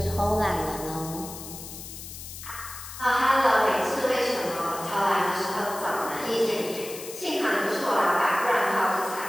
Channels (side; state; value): left; noise; hiss, 12 dB below the sound